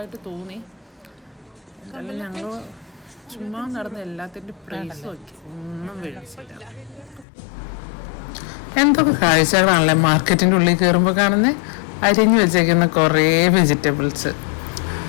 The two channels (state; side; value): drops out; right; at 7.2 s